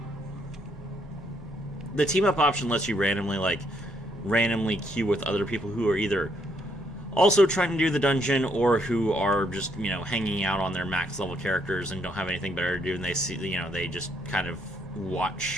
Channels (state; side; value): normal; both; correlation 0.73